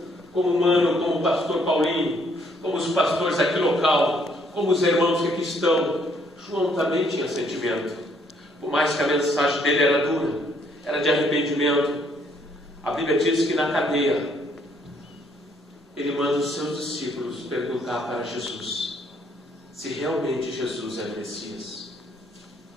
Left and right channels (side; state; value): both; normal; correlation 0.67